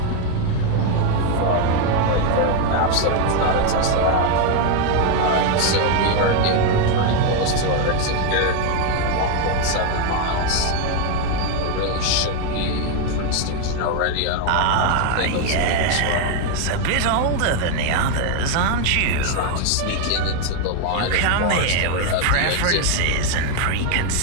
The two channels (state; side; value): different; both; correlation 0.01